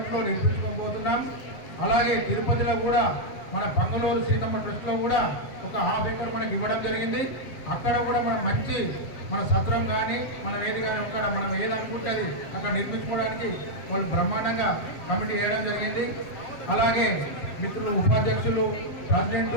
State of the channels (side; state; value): right; late; 7.7 ms